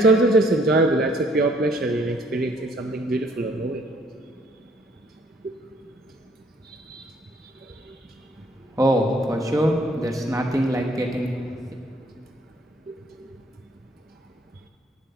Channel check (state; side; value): normal; both; correlation 0.63